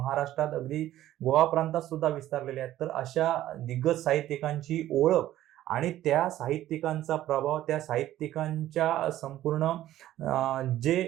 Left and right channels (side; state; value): left; quieter; 13.7 dB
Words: अगदी गोवा प्रांतात सुद्धा विस्तारलेले आहेत, तर अशा दिग्गज साहित्यिकांची ओळख आणि त्या साहित्यिकांचा प्रभाव, त्या साहित्यिकांच्या संपूर्ण जे